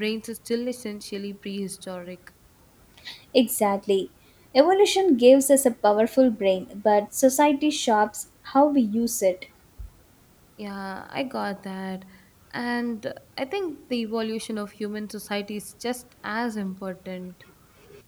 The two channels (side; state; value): both; identical; correlation 1.00